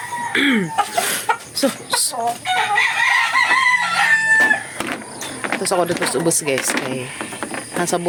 So. Tapos ako dito sa ubos guys. Kaya nasa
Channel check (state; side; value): identical; both; correlation 1.00